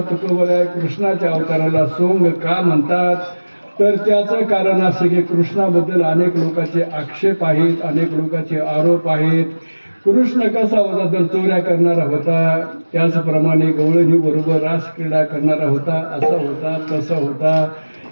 तुकोबरा कृष्णाच्या अवताराला सोंग का म्हणतात तर त्याचं कारण असं की कृष्णाबद्दल अनेक लोकांचे आक्षेप आहेत, अनेक लोकांचे आरोप आहेत. कृष्ण कसा होता तर चोऱ्या करणारा होता, त्याचप्रमाणे गवळणी बरोबर रासक्रीडा करणारा होता, असा होता तसा होता.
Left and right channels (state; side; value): inverted; both; correlation -1.00